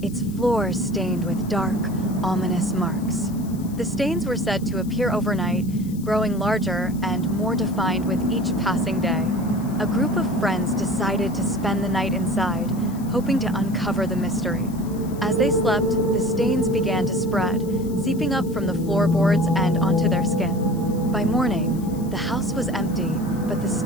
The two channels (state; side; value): noise; left; hiss, 21 dB below the sound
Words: its floors stained with dark, ominous marks. The stains were said to appear overnight, growing larger and more defined with each passing day. A group of friends decided to spend the night inside, hoping to uncover the mystery. As they slept, the stains began to spread, seeping up from the floorboards and onto their skin. By morning, the house was empty, but the